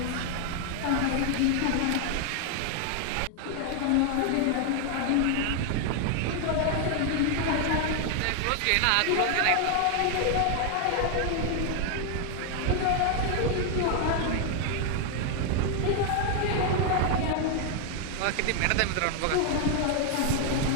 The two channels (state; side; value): different; both; correlation 0.00